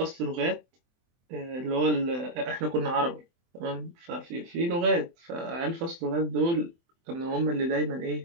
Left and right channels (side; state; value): left; late; 23 ms